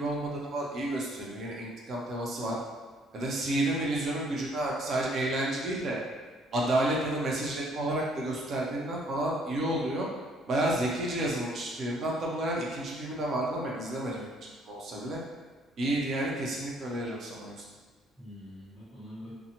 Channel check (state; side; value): normal; both; correlation 0.63